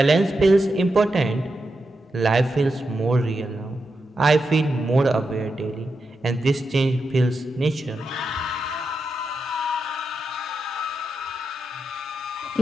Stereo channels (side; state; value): both; normal; correlation 0.87